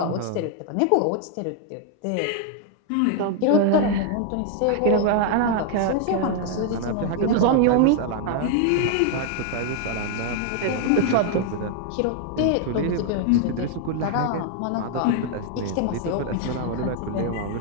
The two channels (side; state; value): both; different; correlation 0.00